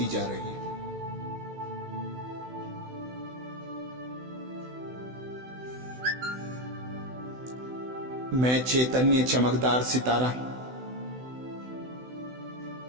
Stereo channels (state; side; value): late; left; 16 ms